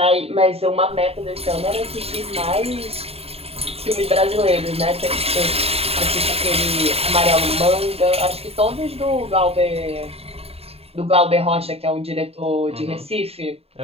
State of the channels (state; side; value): late; left; 0.29 ms